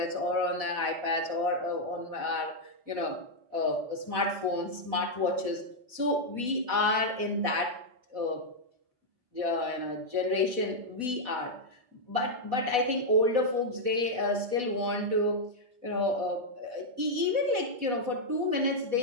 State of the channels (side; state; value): left; late; 4.0 ms